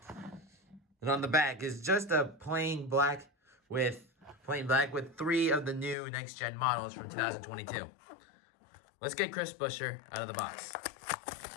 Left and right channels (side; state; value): right; drops out; at 6.0 s